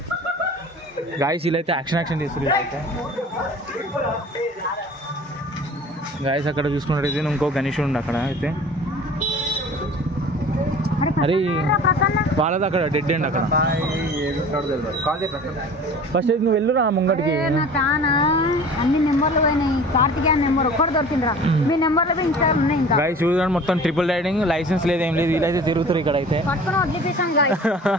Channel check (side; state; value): both; normal; correlation 0.43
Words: గాయస్ వీళ్ళైతే యాక్షన్ చేస్తున్నారు. అయితే గాయస్ అక్కడ చూసుకున్నట్టయితే ఇంకో గణేష్ ఉండి అక్కడ అయితే. అరే వాళ్ళది అక్కడ డెడ్ ఎండ్ అక్కడ. ఫస్ట్ అయితే నువ్వు వెళ్ళురా ముంగటికి. అన్ని నెంబర్లు పోయినాయి. కార్తికేయ నెంబర్ ఒక్కటి దొరికిందిరా. మీ నెంబర్లు ఇన్స్టాల్ ఉన్నాయి. ఇంకా గాయస్ చూడండి మొత్తం ట్రిపుల్ రైడింగ్, లైసెన్స్ లేదు ఏం లేదు. వీళ్ళైతే తిరుగుతారు ఇక్కడ అయితే. పట్టుకుని వదిలిపేసాను గాయస్.